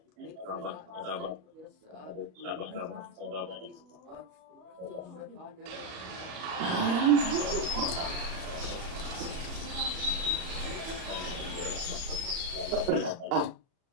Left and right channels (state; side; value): late; left; 38 ms